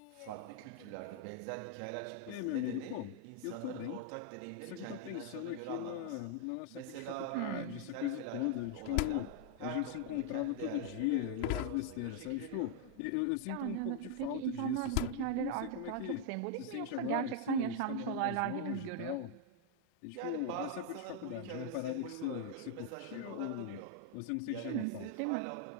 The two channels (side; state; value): both; different; correlation 0.00